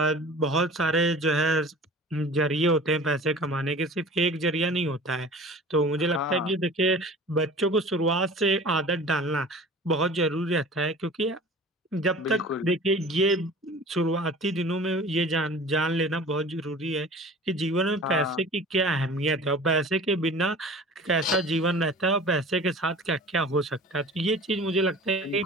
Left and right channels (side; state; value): both; normal; correlation 0.41